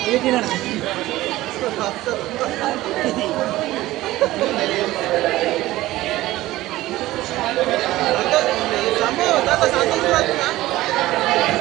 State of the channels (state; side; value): quieter; left; 16.8 dB